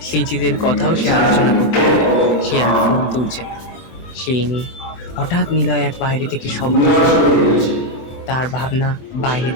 স্মৃতিদের কথাও সে আলোচনা করতে থাকে। সে আর ফোন তুলছে না। সেই নিয়ে হঠাৎ নিলয় এক বাইরে থেকে শব্দ শুনে। তার ভাবনা বাইরে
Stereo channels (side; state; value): right; late; 24 ms